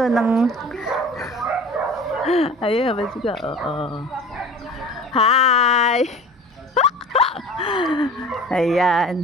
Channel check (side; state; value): both; normal; correlation 0.40